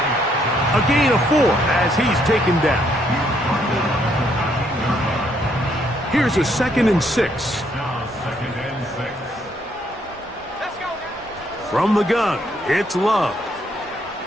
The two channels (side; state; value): both; normal; correlation 0.71